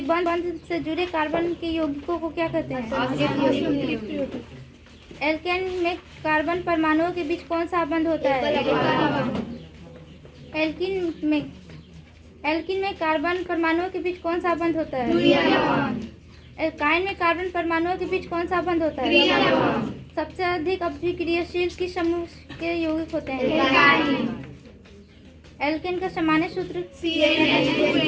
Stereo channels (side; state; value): both; identical; correlation 1.00